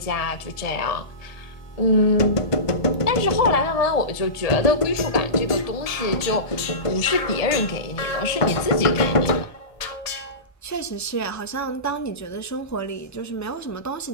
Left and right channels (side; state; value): right; late; 1.7 ms